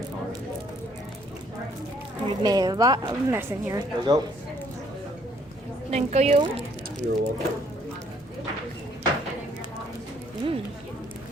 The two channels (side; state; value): both; normal; correlation 0.65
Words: orange. We've made a lot of mess in here. There we go. Thank you. You're welcome.